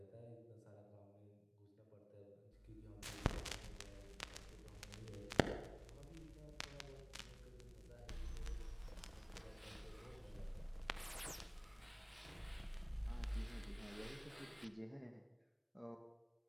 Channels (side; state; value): both; identical; correlation 1.00